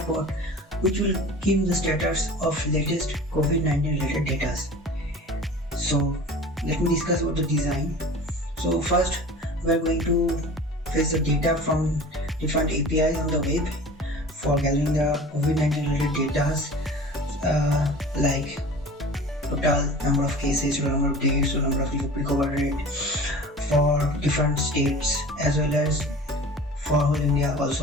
which will give the status of latest COVID-19 related data. So let me discuss about the design. So first we are going to fetch the data from different APIs on the web for gathering the COVID-19 related data like total number of cases, total number of days, total number of recovery rate for different states as well as for whole India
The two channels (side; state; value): both; normal; correlation 0.40